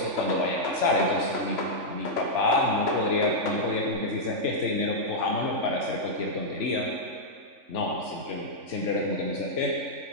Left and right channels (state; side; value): late; left; 3.5 ms